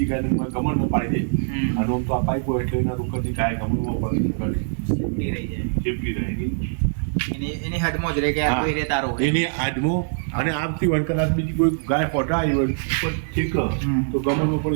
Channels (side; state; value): left; silent; digital silence